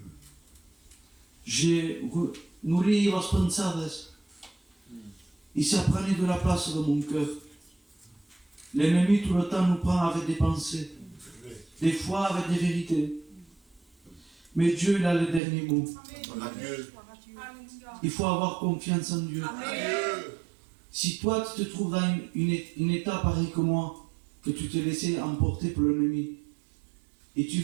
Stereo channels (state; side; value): drops out; left; at 15.4 s